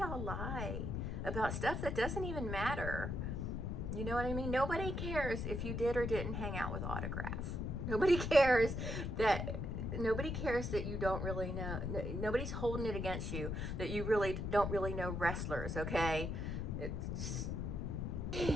lie about stuff that doesn't even matter? You know what I mean? Nobody cares if you did or didn't hang out with Autograph. Nobody cares that you don't really know. Nobody's holding it against you that you really don't really know wrestlers, okay? It's...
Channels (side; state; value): left; noise; rumble, 2 dB below the sound